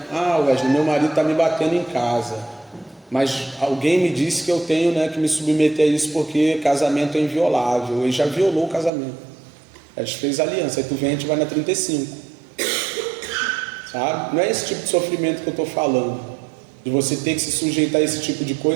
Wesley, meu marido está me batendo em casa, mas alguém me disse que eu tenho, né, que me submeter a isso porque casamento é inviolável. Ele já violou o casamento, a gente fez aliança, aí tu vem, a gente vai na 35, sabe? Não é esse tipo de sofrimento que eu estou falando, de você ter que se sujeitar a esse tipo de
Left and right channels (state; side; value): drops out; left; at 8.9 s